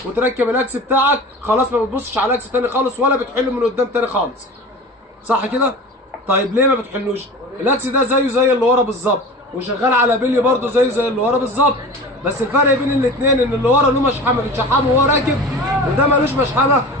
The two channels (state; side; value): normal; both; correlation 0.35